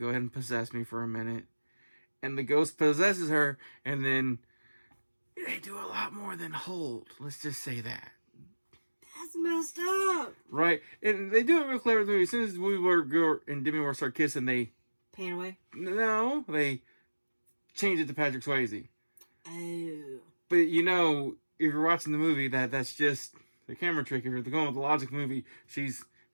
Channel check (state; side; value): inverted; both; correlation -1.00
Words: ahead and possess me for a minute. And the ghost possesses her, and then... they do a lot more than hold. Let's just say that. That's messed up. Right. And they do it real clever. As soon as Whoopi and Demi Moore start kissing, they... pan away? No. They change it to Patrick Swayze. Oh. But, you know, if you're watching the movie, that's just the camera trick. If you're going with the logic movie, she's